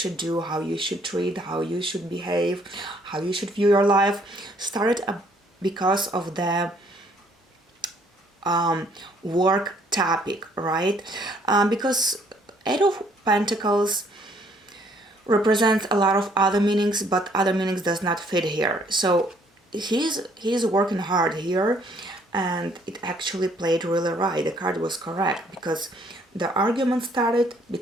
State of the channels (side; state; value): both; normal; correlation 0.64